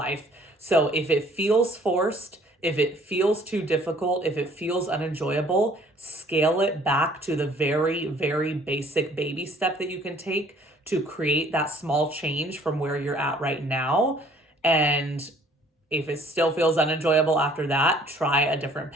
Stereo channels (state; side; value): normal; both; correlation 0.57